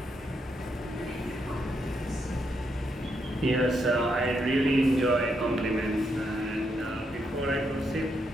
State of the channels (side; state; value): both; normal; correlation 0.79